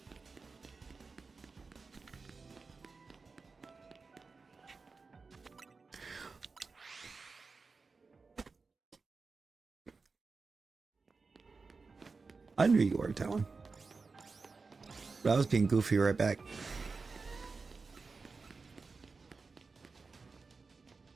I knew you were, Talon. But I was being goofy right back.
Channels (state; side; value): quieter; left; 4.3 dB